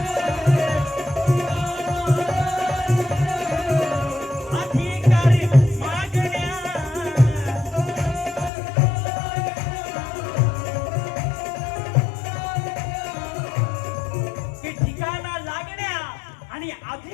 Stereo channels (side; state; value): right; drops out; at 8.5 s